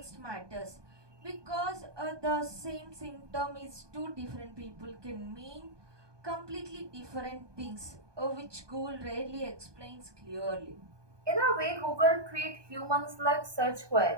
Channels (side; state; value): left; late; 1.2 ms